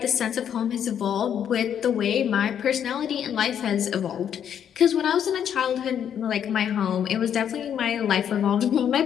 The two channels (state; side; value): quieter; right; 9.0 dB